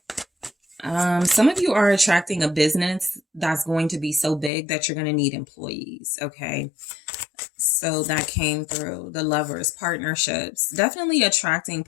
Some of you are attracting a business that's going to be so big that you're going to need employees. Okay. So that came through. The Lovers, partnerships, definitely attracting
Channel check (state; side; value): drops out; right; at 4.5 s